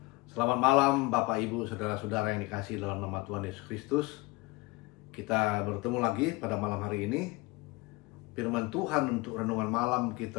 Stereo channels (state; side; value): quieter; right; 22.9 dB